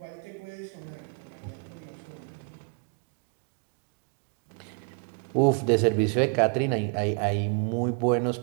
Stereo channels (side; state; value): left; quieter; 37.7 dB